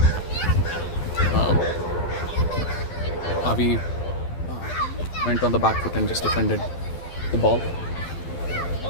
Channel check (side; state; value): right; late; 12 ms